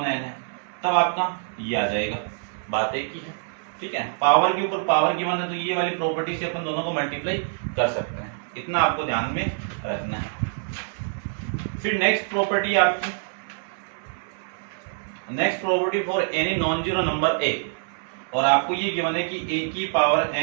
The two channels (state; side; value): silent; left; 62 dB below the other